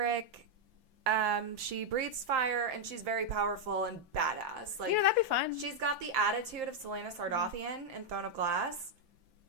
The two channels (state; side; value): late; left; 5.9 ms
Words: She breathes fire, and she's very powerful and badass. Like, that'd be fun. She's got the attitude of Selena Sardothian in Throne of Glass.